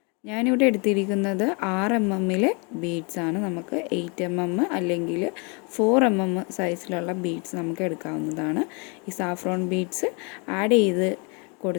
ഞാനിവിടെ എടുത്തിരിക്കുന്നത് 6 mm ബീഡ്സ് ആണ്. നമുക്ക് 8 mm അല്ലെങ്കിൽ 4 mm സൈസിലുള്ള ബീഡ്സ് നമുക്ക് എടുക്കാവുന്നതാണ്. ഈ സാഫ്രോൺ ബീഡ്സ് ആഡ് ചെയ്ത്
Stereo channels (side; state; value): right; quieter; 33.0 dB